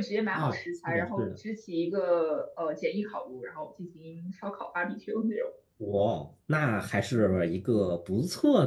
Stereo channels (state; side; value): identical; both; correlation 1.00